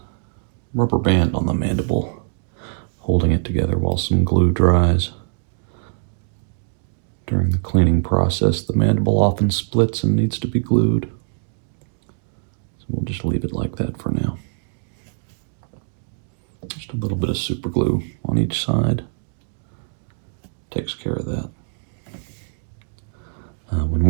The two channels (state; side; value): silent; left; digital silence